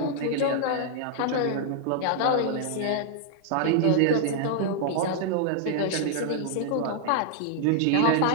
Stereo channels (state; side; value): different; both; correlation -0.01